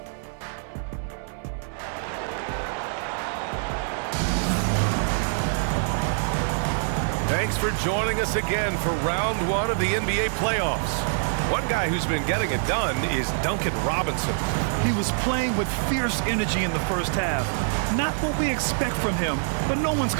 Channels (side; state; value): left; silent; 57 dB below the other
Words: Thanks for joining us again for round 1 of the NBA playoffs. One guy who's been getting it done is Duncan Robinson. He was playing with fierce energy in the first half. Not what we expect from him, but no one's